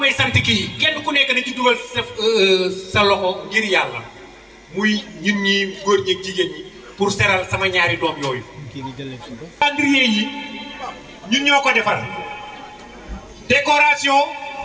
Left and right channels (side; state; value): both; identical; correlation 1.00